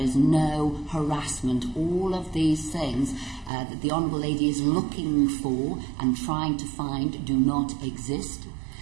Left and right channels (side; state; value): left; drops out; at 3.5 s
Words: no harassment. All of these things that the Honourable Lady is looking for and trying to find do not exist.